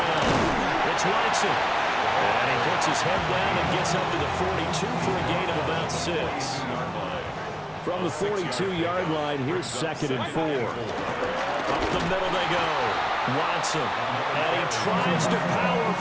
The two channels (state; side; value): identical; both; correlation 1.00